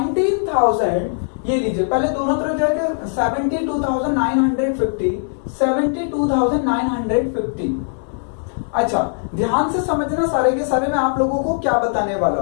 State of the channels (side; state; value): right; silent; 62 dB below the other